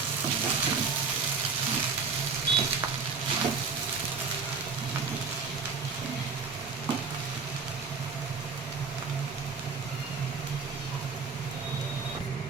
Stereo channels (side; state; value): left; quieter; 5.2 dB